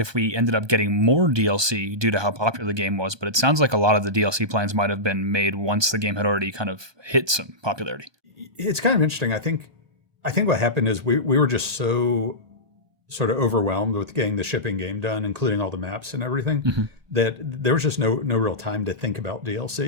we ended up getting more DLC due to how popular the game was, but it sounds like a lot of the DLC plans might have been made once the game had already kind of hit some popularity. It's kind of interesting. I think what happened is we were just so sort of overwhelmed with getting the shipping game done, including all the maps and everything, that there was just no real time to think about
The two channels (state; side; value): late; left; 1.2 ms